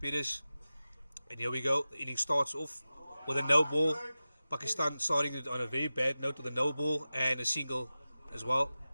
Perez. And here we go. The inning starts off with a no ball. Pakistan starting it on a very bad note with a no ball and a single as well.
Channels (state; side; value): inverted; both; correlation -0.95